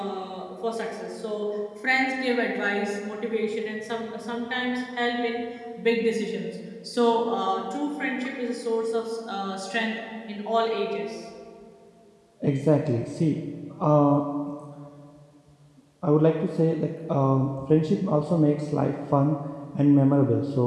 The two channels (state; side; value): identical; both; correlation 1.00